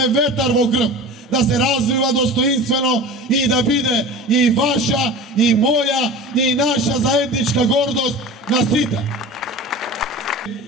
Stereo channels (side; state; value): both; normal; correlation 0.35